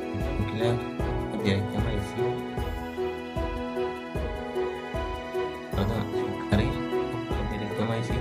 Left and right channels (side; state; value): both; identical; correlation 1.00